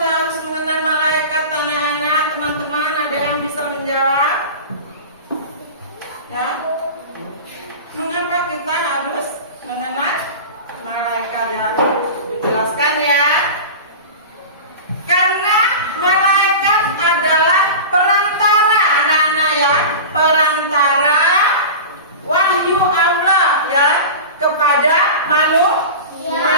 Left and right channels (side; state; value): both; inverted; correlation -0.31